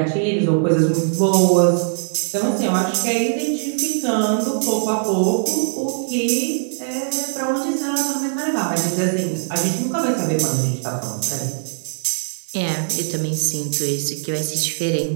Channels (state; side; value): silent; left; digital silence